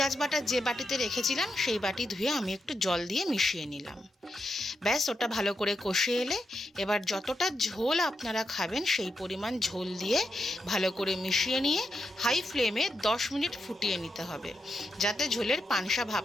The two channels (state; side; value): normal; both; correlation 0.85